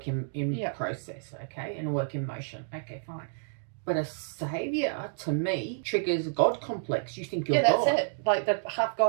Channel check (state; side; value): silent; left; digital silence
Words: in process, okay? And a work in motion. Okay, fine. But a saviour, to me, triggers a God complex. You think you're God. Yeah, that's it. Like the half